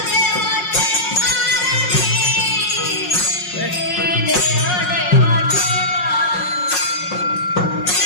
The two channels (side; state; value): right; late; 5.5 ms